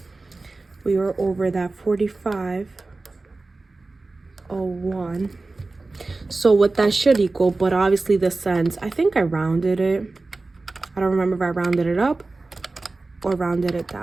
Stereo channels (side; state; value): left; quieter; 3.4 dB